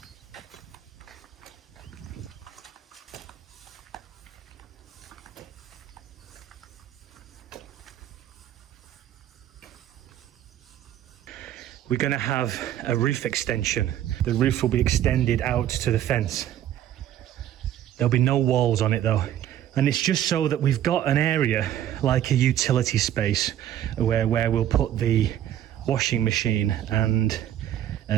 we're going to have a roof extension. The roof will be extended out to the fence. There'll be no walls on it though. And it's just so that we've got an area like a utility space where we'll put the washing machine and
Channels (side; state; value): left; quieter; 11.5 dB